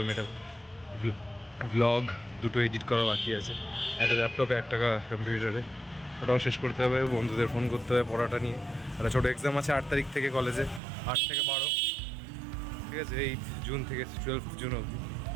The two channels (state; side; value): drops out; left; at 10.8 s